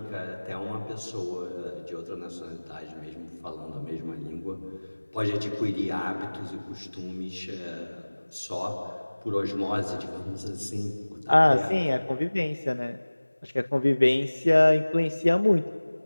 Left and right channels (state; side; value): inverted; both; correlation -1.00